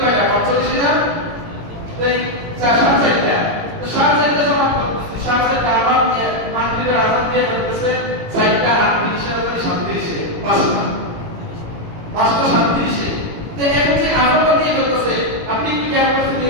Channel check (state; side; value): late; left; 18 ms